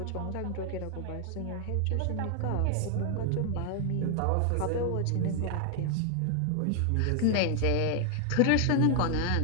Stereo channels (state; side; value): different; both; correlation 0.00